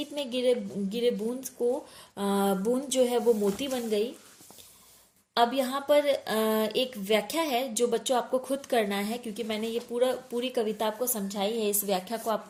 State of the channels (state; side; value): identical; both; correlation 1.00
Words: में गिरे गिरे बूंद जो है वो मोती बन गई। अब यहाँ पर एक व्याख्या है जो बच्चों आपको खुद करना है, क्योंकि मैंने ये पूरी कविता आपको समझाई है। इस व्याख्या को आप